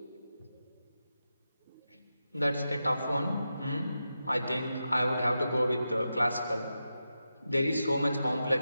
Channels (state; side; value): inverted; both; correlation -0.89